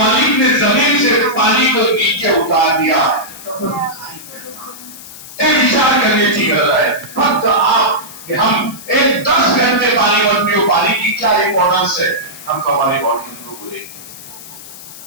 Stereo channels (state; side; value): noise; left; hiss, 16 dB below the sound